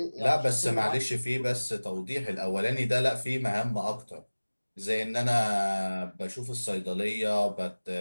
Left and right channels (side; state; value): both; inverted; correlation -1.00